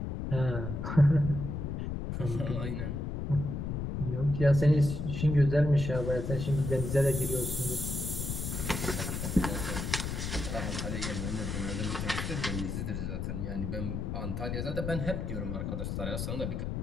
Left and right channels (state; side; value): noise; left; rumble, 3 dB below the sound